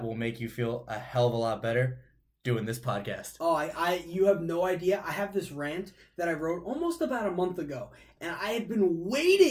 will make you feel a hell of a lot better: doing this podcast. Oh, you have no idea. I have this rant that I wrote almost about a month ago, and I had been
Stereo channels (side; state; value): both; identical; correlation 1.00